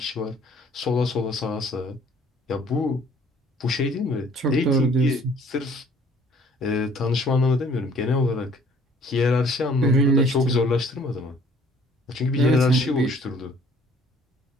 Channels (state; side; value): normal; both; correlation 0.56